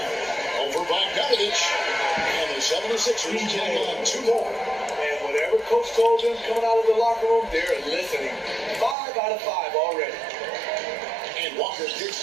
Over by Bogdanovich. And the 76ers take on 2 more. And whatever coach told them coming out of the locker room, they're listening. 5 out of 5 already. And Walker kicks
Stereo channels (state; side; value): drops out; left; at 9.0 s